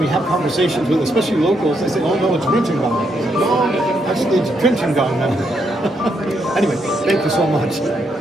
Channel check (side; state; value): both; normal; correlation 0.78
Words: have conversations with, especially locals, they say, oh no, it's Drinchengang. No, actually it's Drinchengang now. Anyway, thank you so much.